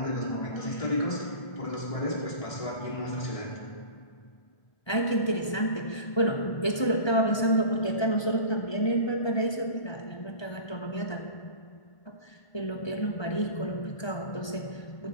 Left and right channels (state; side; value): late; right; 1.2 ms